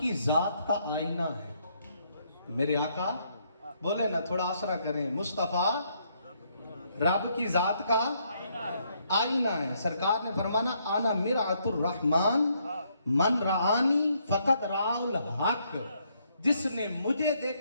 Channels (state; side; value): inverted; both; correlation -0.72